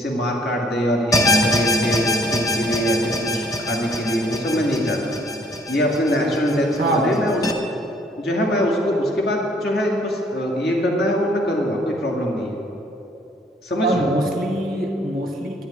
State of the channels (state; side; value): normal; both; correlation 0.62